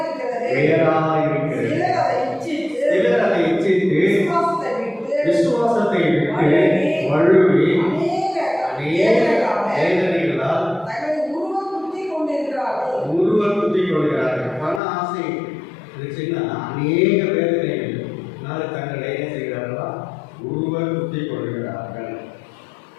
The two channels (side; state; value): right; drops out; at 14.8 s